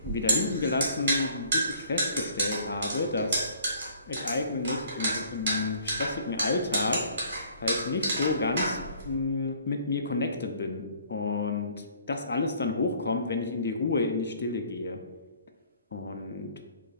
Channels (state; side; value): inverted; both; correlation -0.56